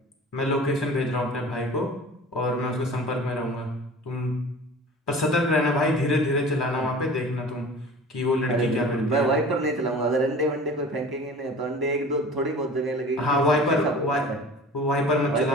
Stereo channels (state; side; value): normal; both; correlation 0.41